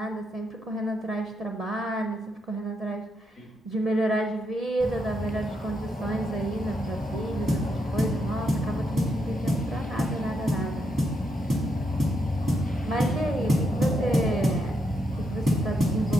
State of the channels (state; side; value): normal; both; correlation 0.80